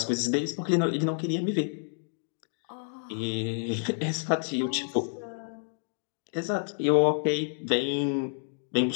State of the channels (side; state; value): right; silent; digital silence